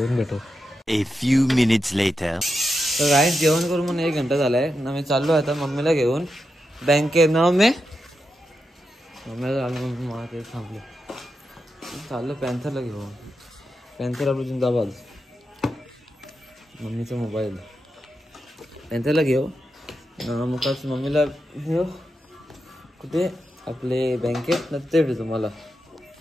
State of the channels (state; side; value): normal; both; correlation 0.88